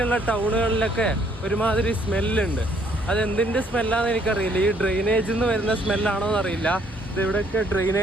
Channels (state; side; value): normal; both; correlation 0.65